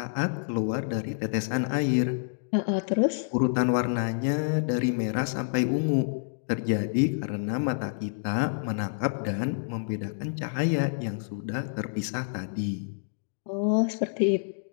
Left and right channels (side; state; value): right; silent; digital silence